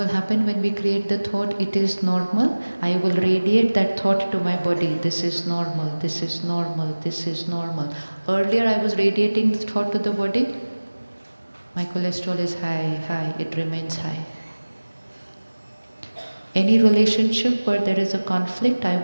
happen when we create the thought, it is normal? I will radiate that thought to my body. This is normal, this is normal, this is normal. Earlier I was radiating the thought to the body. My cholesterol is high, it remains high. Any relationship where there is a conflict, I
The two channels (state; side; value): inverted; both; correlation -1.00